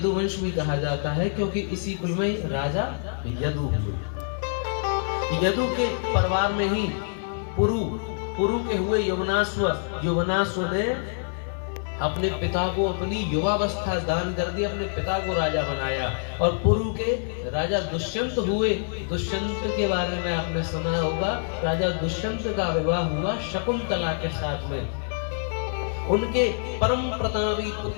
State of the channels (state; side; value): silent; right; digital silence